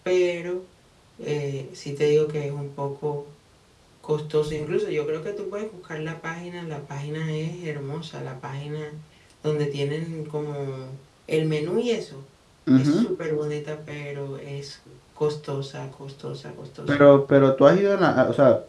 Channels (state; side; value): identical; both; correlation 1.00